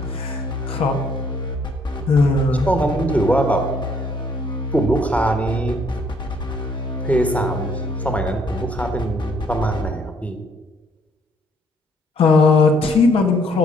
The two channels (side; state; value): both; normal; correlation 0.66